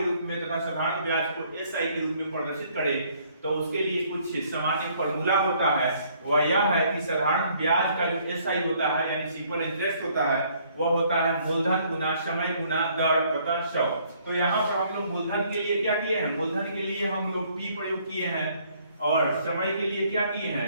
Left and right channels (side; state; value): both; inverted; correlation -0.64